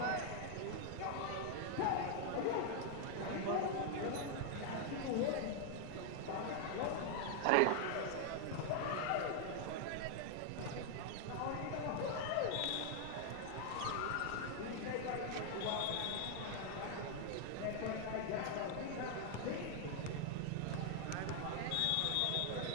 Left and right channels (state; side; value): different; both; correlation 0.00